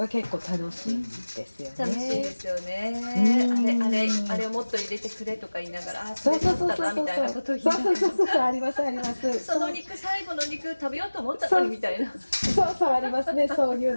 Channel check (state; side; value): inverted; both; correlation -1.00